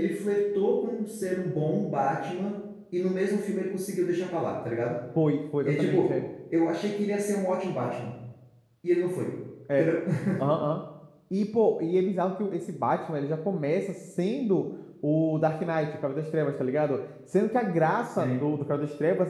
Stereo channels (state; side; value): identical; both; correlation 1.00